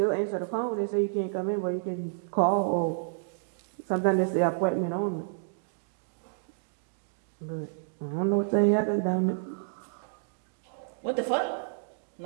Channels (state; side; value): silent; left; digital silence